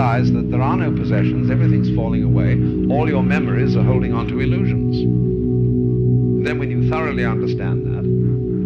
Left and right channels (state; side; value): identical; both; correlation 1.00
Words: that there are no possessions, everything's falling away, all your memories are holding on to illusions. And then when you thoroughly understand that,